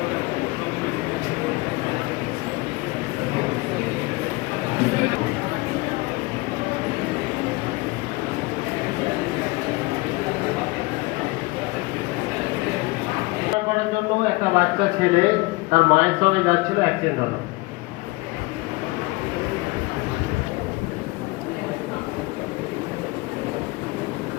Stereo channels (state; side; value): quieter; right; 23.3 dB